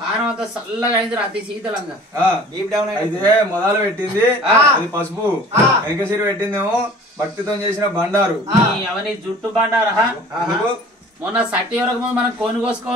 కారం అంతా చల్లగా అయింది అతి శీతలంగా అయితే మొదలు పెట్టింది అది పసుపు వెనక సిరి పెట్టిందేమో భక్తితో చేసిన బండారు అవన్నీ జుట్టు బండారా మొన్న సట్టి వరకు ముందు మనం కోని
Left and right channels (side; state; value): both; normal; correlation 0.46